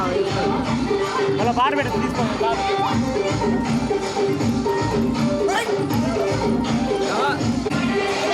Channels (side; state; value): both; identical; correlation 1.00